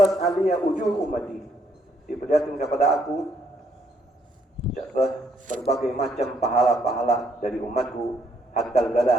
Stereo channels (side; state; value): both; normal; correlation 0.71